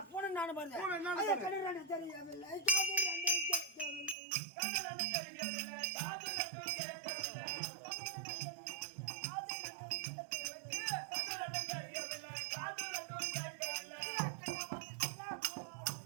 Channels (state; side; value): drops out; left; at 4.2 s